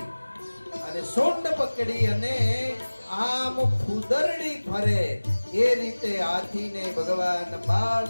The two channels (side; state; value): both; inverted; correlation -1.00